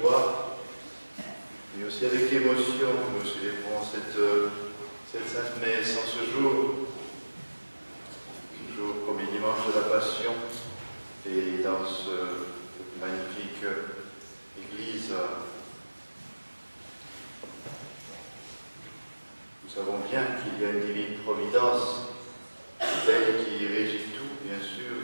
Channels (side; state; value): both; inverted; correlation -1.00